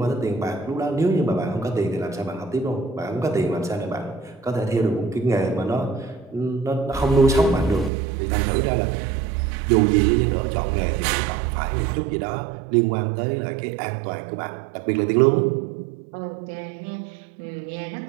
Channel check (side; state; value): left; drops out; at 7.9 s